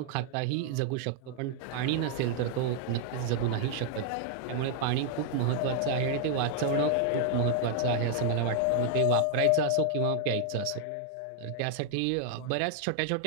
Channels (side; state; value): both; different; correlation 0.00